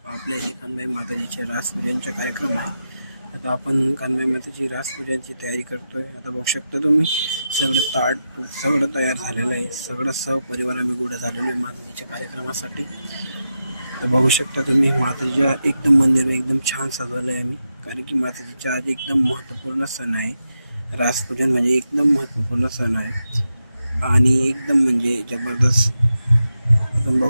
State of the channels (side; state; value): both; inverted; correlation -0.88